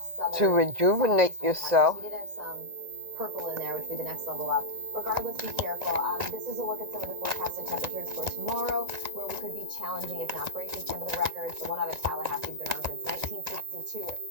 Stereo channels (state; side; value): late; left; 1.9 ms